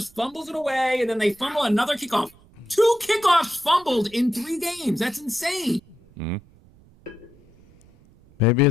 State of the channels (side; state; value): right; noise; rumble, 28 dB below the sound